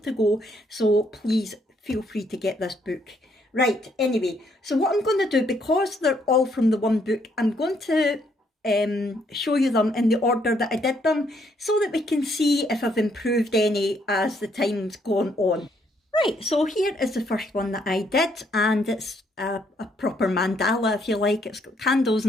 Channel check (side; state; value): both; normal; correlation 0.71